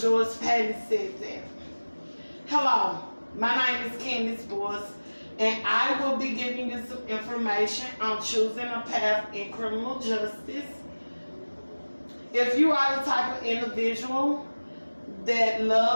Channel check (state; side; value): inverted; both; correlation -1.00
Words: Patton said that. Hello, my name is Candace Boyce, and I will be giving you some information on choosing a path in criminal justice. If you are the type of individual that